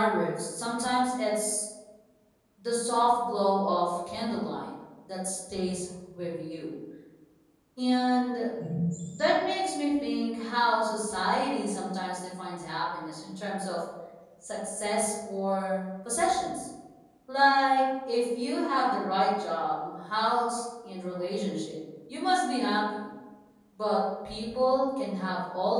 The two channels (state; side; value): identical; both; correlation 1.00